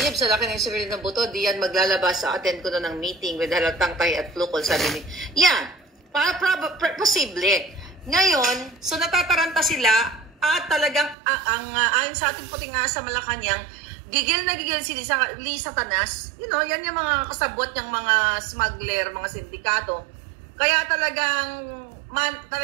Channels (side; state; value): left; drops out; at 11.2 s